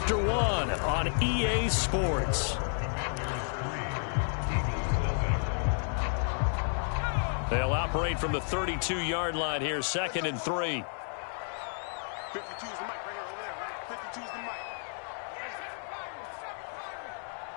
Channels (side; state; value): right; silent; 57 dB below the other